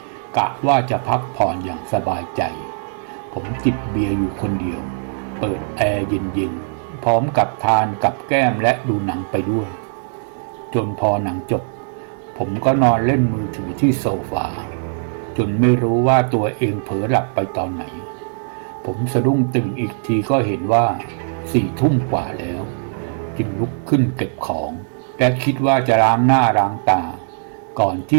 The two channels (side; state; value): left; silent; digital silence